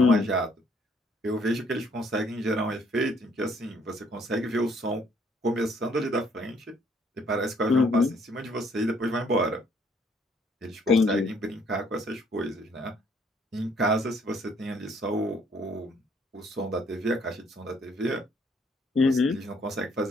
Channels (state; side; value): normal; both; correlation 0.64